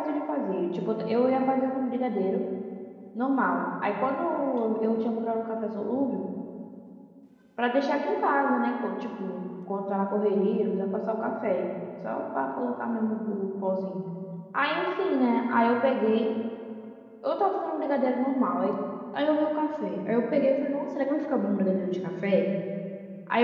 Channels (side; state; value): both; identical; correlation 1.00